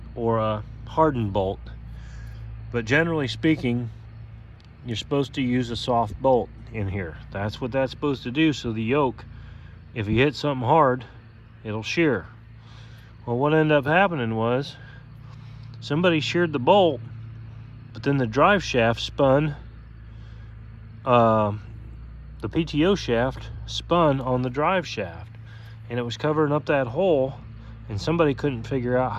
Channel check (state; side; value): identical; both; correlation 1.00